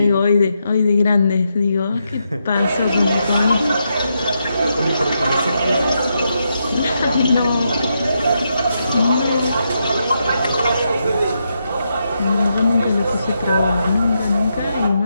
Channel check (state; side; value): inverted; both; correlation -0.82